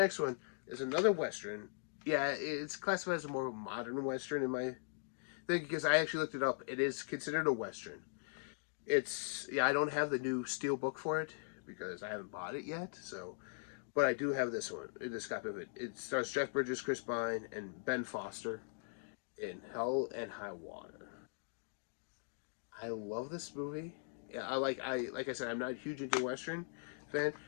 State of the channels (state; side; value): silent; right; digital silence